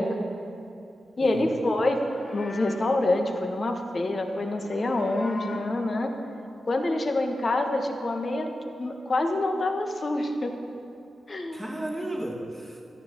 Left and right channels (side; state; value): both; normal; correlation 0.92